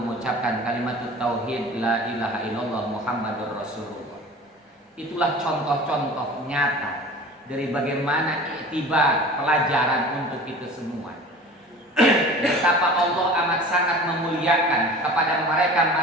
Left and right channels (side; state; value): both; normal; correlation 0.40